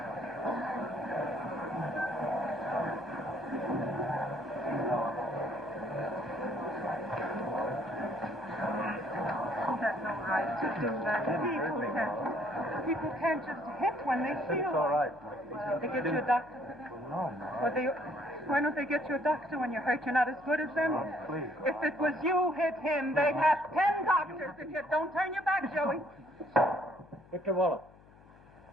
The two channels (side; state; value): left; noise; hum, 24 dB below the sound